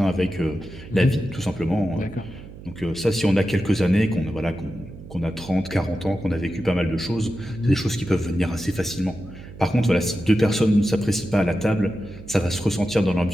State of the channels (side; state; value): right; noise; hum, 15 dB below the sound